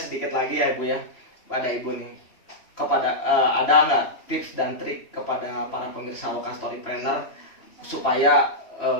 lagi ya Ibu ya, pada Ibu nih, kepada ada nggak tips dan trik kepada para pemirsa Loka Storypreneur supaya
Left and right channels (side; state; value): right; late; 3.0 ms